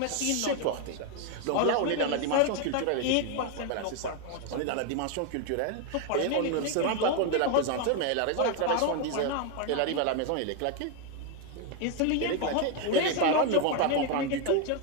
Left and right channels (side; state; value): both; different; correlation 0.01